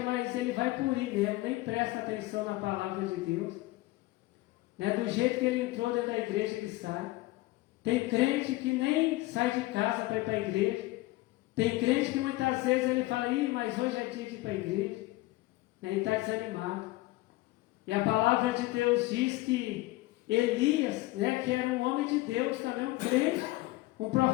ele vai por ir mesmo, nem presta atenção na palavra de Deus, né? Do jeito que ele entrou dentro da igreja, ele sai. Tem crente que nem sai de casa para ir para a igreja. Tem crente que muitas vezes ele fala, mas hoje é dia de ir para a igreja. Ele está desanimado. E a palavra de Deus diz que Elias, né, que era um homem de Deus, também um crente, Um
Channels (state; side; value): quieter; right; 19.4 dB